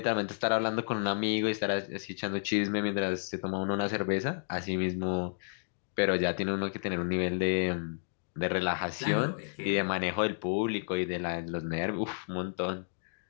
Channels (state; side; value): silent; right; digital silence